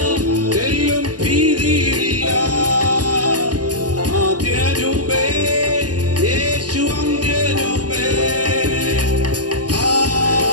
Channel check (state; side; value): late; left; 0.68 ms